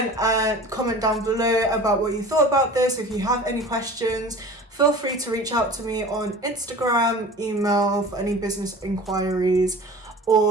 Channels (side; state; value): both; normal; correlation 0.40